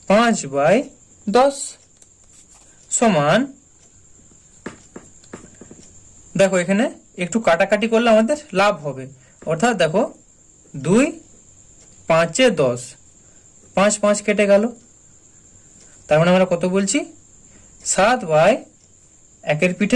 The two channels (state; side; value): identical; both; correlation 1.00